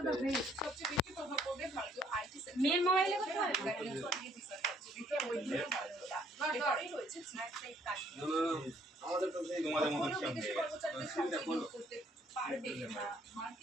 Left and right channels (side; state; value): both; normal; correlation 0.65